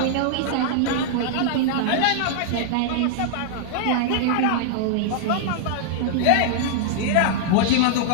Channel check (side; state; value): both; different; correlation -0.01